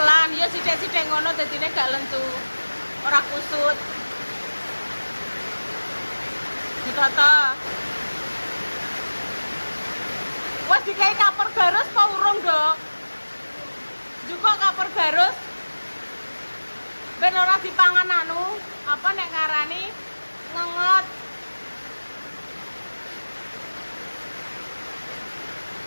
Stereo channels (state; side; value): inverted; both; correlation -1.00